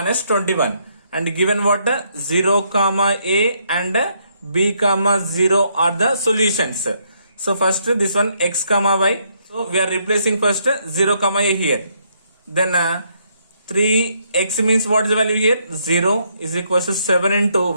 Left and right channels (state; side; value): inverted; both; correlation -0.73